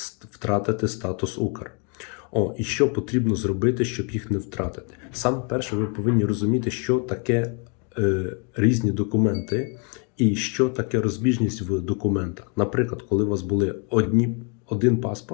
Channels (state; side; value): quieter; right; 36.9 dB